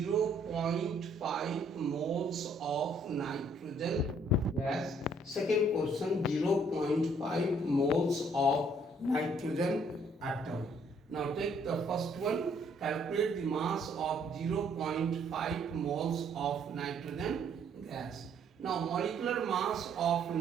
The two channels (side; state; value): both; normal; correlation 0.65